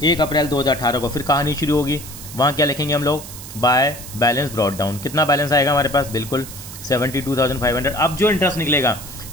1 अप्रैल 2018 को फिर कहानी शुरू होगी। वहाँ क्या लिखेंगे हम लोग, बाय बैलेंस ब्रॉड डाउन। कितना बैलेंस आएगा हमारे पास, बिल्कुल 72,500। अब जो इंटरेस्ट निकलेगा,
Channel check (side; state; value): right; noise; hiss, 13 dB below the sound